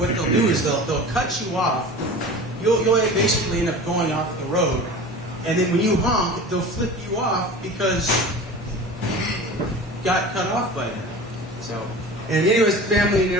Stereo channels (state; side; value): normal; both; correlation 0.36